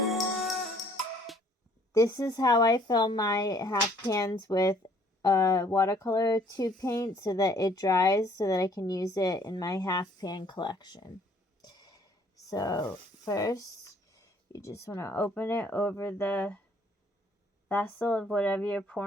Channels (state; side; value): normal; both; correlation 0.60